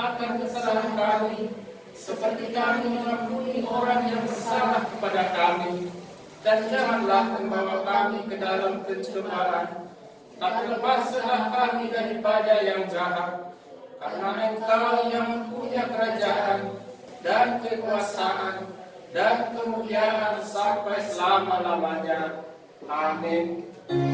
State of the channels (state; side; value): identical; both; correlation 1.00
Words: kesalahan kami, seperti kami mengampuni orang yang bersalah kepada kami. Dan janganlah membawa kami ke dalam pencobaan, tapi lepaskanlah kami daripada yang jahat. Karena Engkau yang punya kerajaan dan kekuasaan dan kemuliaan sampai selama-lamanya. Amin.